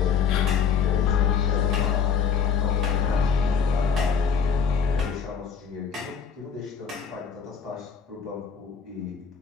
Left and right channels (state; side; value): quieter; right; 6.7 dB